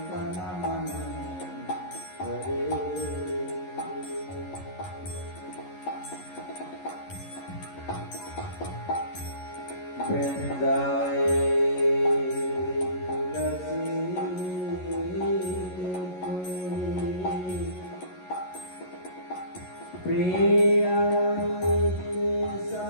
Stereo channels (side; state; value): right; late; 11 ms